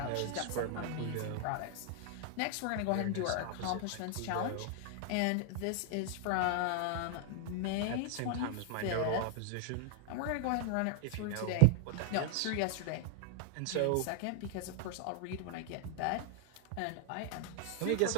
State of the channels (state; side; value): different; both; correlation 0.00